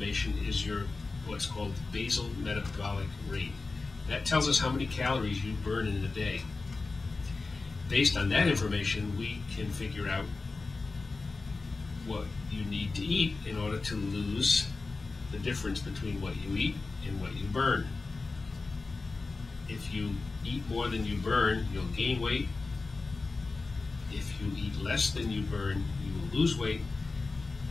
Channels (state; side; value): quieter; right; 3.8 dB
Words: is your what's called basal metabolic rate. That tells us how many calories you burn in a day. Based on that information, we can figure out what you need to eat in order to lose the difference between what you eat and what you burn. If you eat more than you burn, you'll gain weight. If you eat less than you burn, you will lose weight.